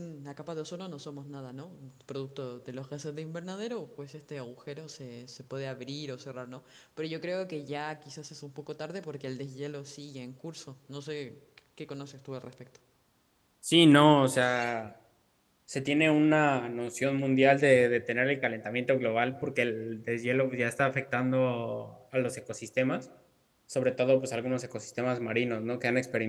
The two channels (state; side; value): identical; both; correlation 1.00